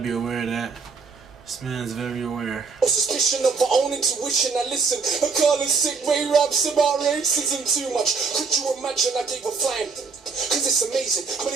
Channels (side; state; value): left; quieter; 4.9 dB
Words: aware of that. This man's very aware. Suspicion of our own intuition. I listen. Akala sick way raps about racism too much. Could you imagine I gave a flying? Cause it's amazing.